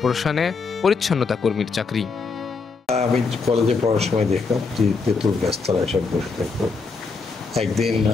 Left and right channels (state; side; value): quieter; right; 4.6 dB